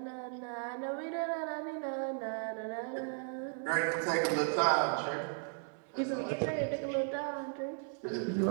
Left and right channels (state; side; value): silent; left; 54 dB below the other